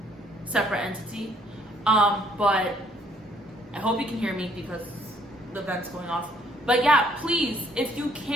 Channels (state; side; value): normal; both; correlation 0.65